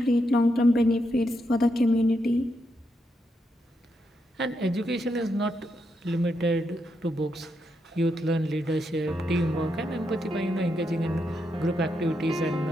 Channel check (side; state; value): both; normal; correlation 0.82